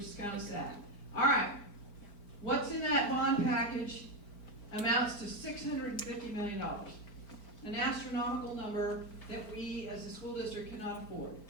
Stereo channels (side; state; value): right; late; 5.0 ms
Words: is kind of sad. All right, what's in that bond package amounts to $650 million, an astronomical number that we as a school district cannot afford.